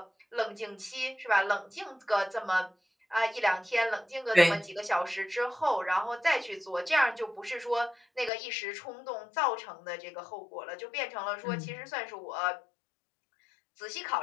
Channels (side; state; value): right; drops out; at 8.3 s